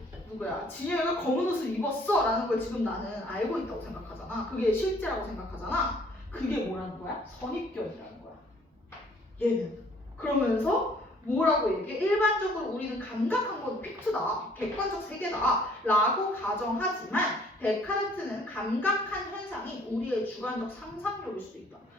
진영이가 검은 옷을 입었어 라는 걸 지금 나는 알고 있다고 생각하잖아. 그게 실제라고 생각하잖아. 그게 뭐라는 거야? 선입견이라는 거야. 얘는. 그러면서 뭐라고 얘기해? 일반적으로 우리는 감각한 건 픽트다, 객관적 세계다 라고 가정하지만 데카르트는 감각한 현상이 우리의 주관적 상상력일 수도 있다.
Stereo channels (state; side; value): normal; both; correlation 0.59